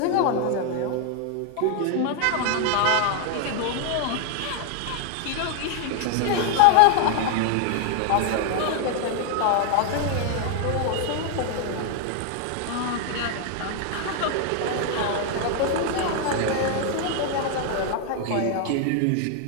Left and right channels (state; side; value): different; both; correlation 0.00